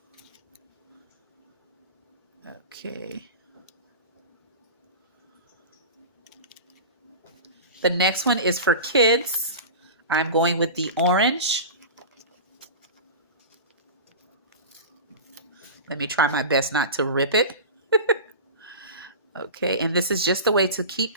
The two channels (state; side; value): inverted; both; correlation -0.30